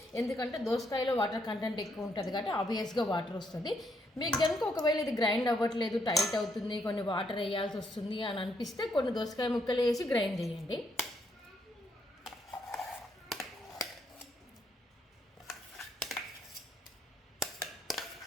ఎందుకంటే దోసకాయలో వాటర్ కంటెంట్ ఎక్కువ ఉంటుంది కాబట్టి ఆబ్వియస్గా వాటర్ వస్తుంది. మీకు కనుక ఒకవేళ ఇది గ్రైండ్ అవ్వట్లేదు, టైట్ అవుతుంది, కొన్ని వాటర్ వేయాల్సి వస్తుంది అని అనిపిస్తే కొన్ని దోసకాయ ముక్కలు వేసి గ్రైండ్ చేయండి.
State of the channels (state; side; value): normal; both; correlation 0.74